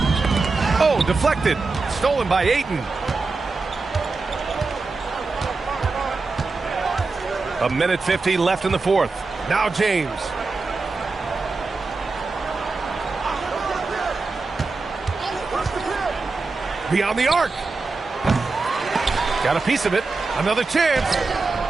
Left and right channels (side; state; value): left; quieter; 3.9 dB